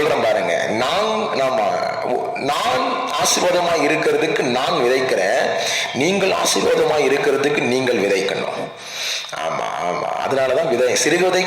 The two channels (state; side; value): identical; both; correlation 1.00